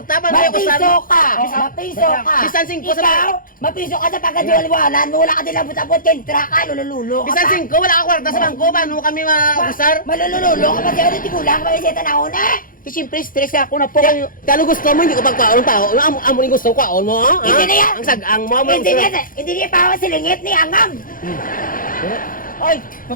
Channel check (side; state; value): right; late; 0.40 ms